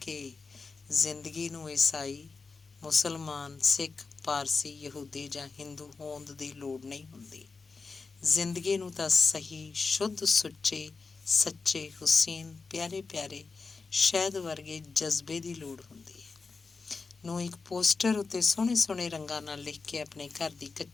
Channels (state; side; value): quieter; right; 4.4 dB